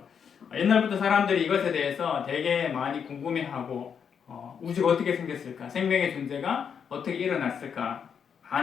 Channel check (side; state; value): right; quieter; 7.2 dB